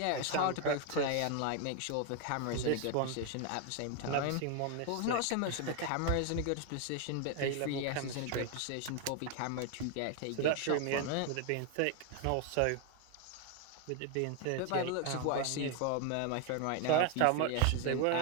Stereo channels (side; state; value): both; different; correlation 0.01